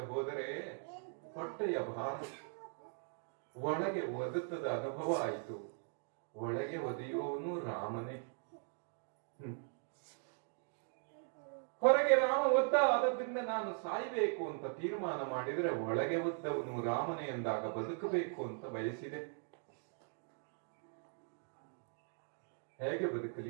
ಹೋದರೆ ಹೊಟ್ಟೆಯ ಭಾರ ಒಳಗೆ ಒದತದ ಅನುಭವ ಆಯಿತು. ಒಳಗೆ ಒದೆಯುವವನು ರಾಮನೇ. ಹೊರಗೆ ರಾಮ ಒದ್ದ, ಆದದ್ರಿಂದ ನಾನು ಸಾಯ್ಬೇಕು ಅಂತ ತೀರ್ಮಾನ ಮಾಡಿದ್ರೆ ಒಳಗೆ ಒದ್ದವನು ರಾಮನೇ ಎಂದಾಗ ಬದುಕಬೇಕು ಅಂತ ಬಯಸಿದೆ. ಹೇಗೆ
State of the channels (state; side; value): silent; left; 51 dB below the other